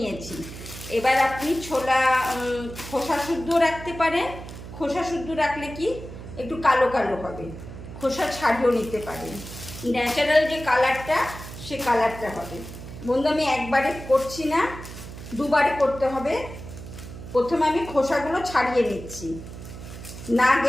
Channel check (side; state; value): right; noise; hum, 12 dB below the sound